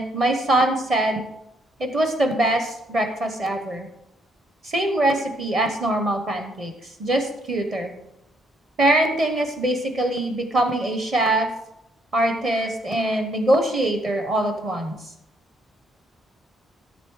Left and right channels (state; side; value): normal; both; correlation 0.70